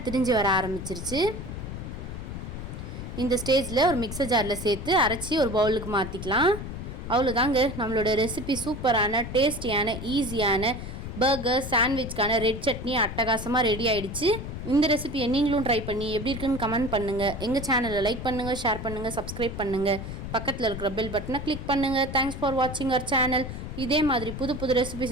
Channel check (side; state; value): left; noise; rumble, 8 dB below the sound